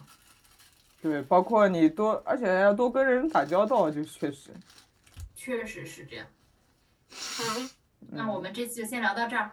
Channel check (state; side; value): identical; both; correlation 1.00